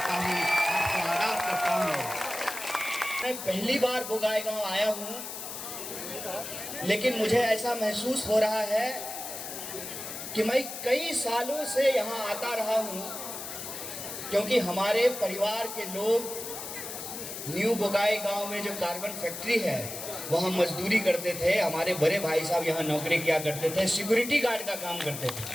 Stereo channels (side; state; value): left; noise; hiss, 8 dB below the sound